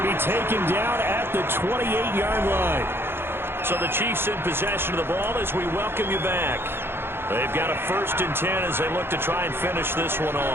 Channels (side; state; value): left; late; 0.11 ms